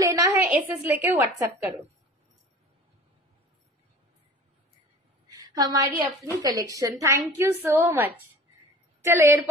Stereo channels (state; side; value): normal; both; correlation 0.42